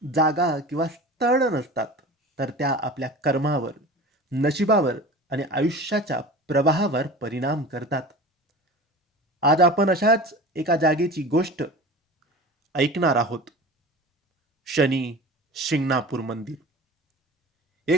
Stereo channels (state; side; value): normal; both; correlation 0.36